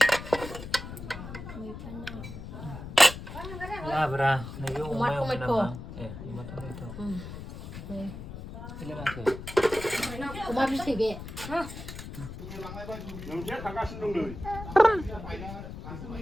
लाब्रा नैबे अमायाव नामा अमा टमेट' अमा बिथै बे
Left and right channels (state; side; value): noise; left; rumble, 10 dB below the sound